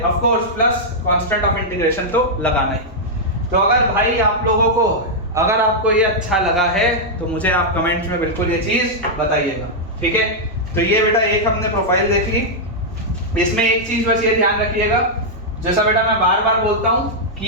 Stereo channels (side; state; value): both; normal; correlation -0.06